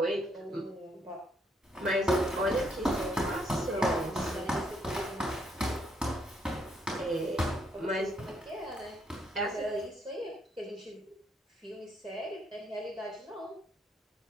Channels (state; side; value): normal; both; correlation 0.72